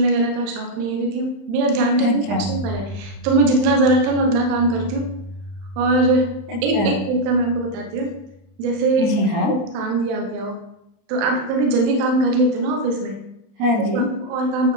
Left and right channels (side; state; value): left; late; 30 ms